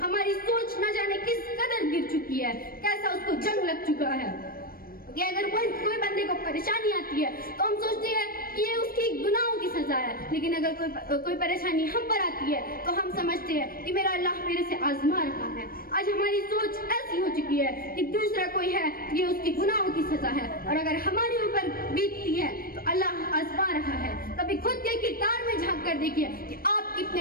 ہماری سوچ نہ جانے کس قدر گر چکی ہے، کیسا اس کو جنگ لگ چکا ہے کہ اگر کوئی بندے کو پریشانی آتی ہے تو ہم سوچتے ہیں کہ یہ اس کی گناہوں کی سزا ہے، لیکن اگر کوئی پریشانی ہم پر آتی ہے تو ہم سمجھتے ہیں کہ میرا اللہ میرے سے آزما رہا ہے. آج ہماری سوچ ایسی ہو چکی ہے کہ دوسرا کوئی ہے یہ اس کی گناہوں کی سزا ہے، اور اگر ہمارے اوپر بیتتی ہے تو اللہ آزما رہا ہے. کبھی خود کے کردار میں جھانک کر دیکھیے کہ آپ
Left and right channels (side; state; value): right; late; 0.43 ms